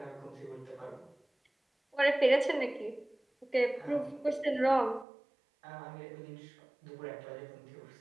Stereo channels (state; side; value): drops out; left; at 5.1 s